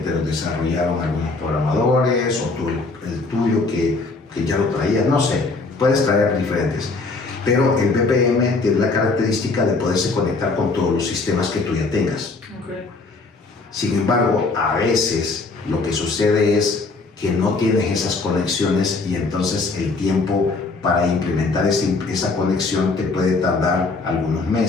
los desarrollaron algunos programadores, o tú, el tuyo que ya lo traías, no sé, puedes traer diferentes. Pero el BPM tiene la característica de poderse conectar con todos los sistemas que tú ya tengas. Okay. Sin embargo, a veces lo que sucede es que no tienes esas conexiones y entonces el tiempo para implementar esa conexión te puede tardar algunos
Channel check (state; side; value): quieter; right; 3.8 dB